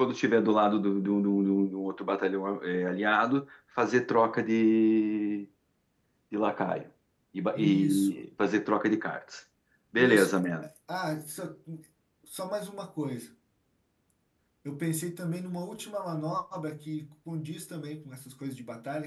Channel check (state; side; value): identical; both; correlation 1.00